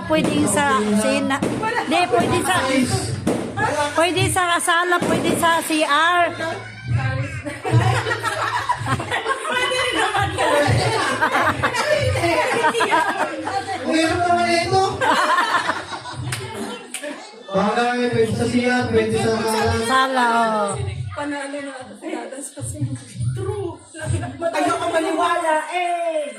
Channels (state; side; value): identical; both; correlation 1.00